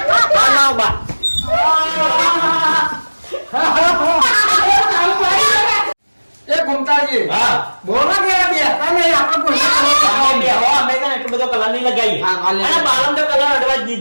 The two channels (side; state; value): both; inverted; correlation -1.00